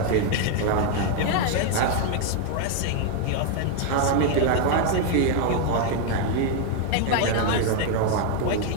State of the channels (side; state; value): both; different; correlation 0.00